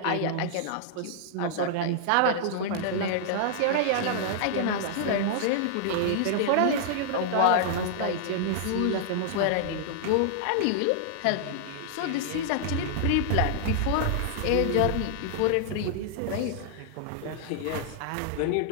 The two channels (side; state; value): both; different; correlation -0.01